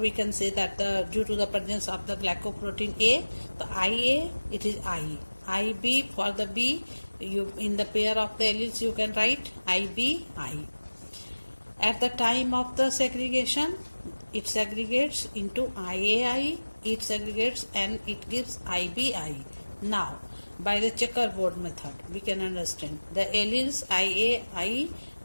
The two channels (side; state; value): both; inverted; correlation -1.00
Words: can say that due to the presence of the glycoprotein A, the IA, it is I. IB for the B, you in the pair of the alleles you can write IB, I. At the time of the segregation, it segregates into IAI, it segregates and it gives IBI. Now, by the checkerboard method, we can understand the alleles IAI,